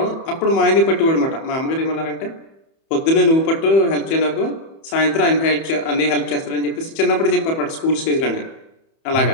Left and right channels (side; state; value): right; late; 31 ms